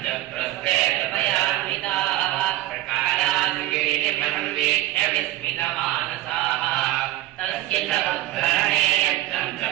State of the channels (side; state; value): left; quieter; 15.5 dB